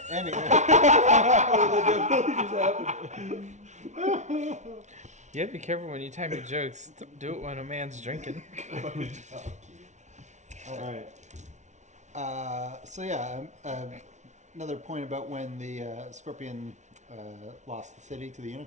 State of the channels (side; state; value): left; late; 0.34 ms